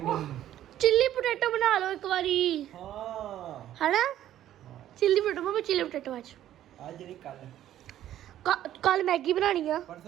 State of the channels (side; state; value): left; quieter; 12.2 dB